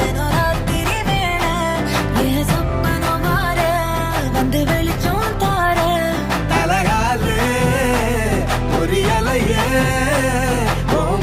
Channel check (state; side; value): identical; both; correlation 1.00